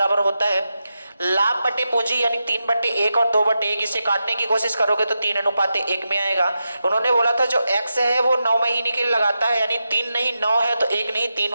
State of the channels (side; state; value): both; inverted; correlation -0.89